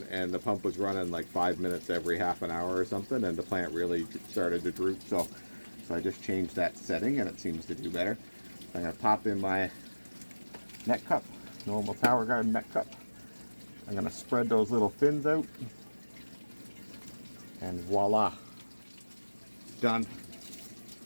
the pump was running like 5 minutes every half an hour or something, and the plant really started to droop. So So I just changed that setting and it seems to do better. So I'm going to pop in my net cup, normal TowerGarden net cup. I'm going to spread those little fins out, and voila, done.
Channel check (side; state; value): both; inverted; correlation -1.00